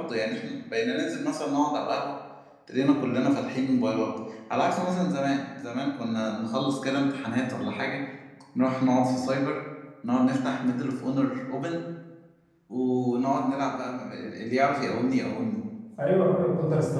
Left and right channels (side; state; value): both; identical; correlation 1.00